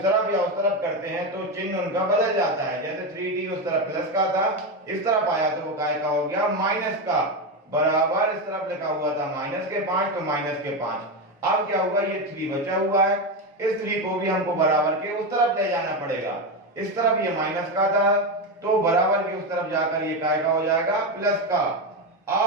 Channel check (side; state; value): both; normal; correlation 0.13